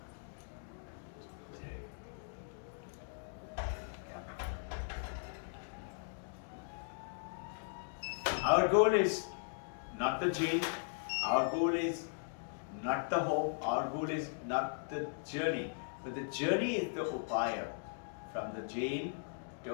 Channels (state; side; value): silent; right; digital silence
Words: our goal is not the jail, our goal is not the home, our goal is not the journey, but the journey is the upaya from the jail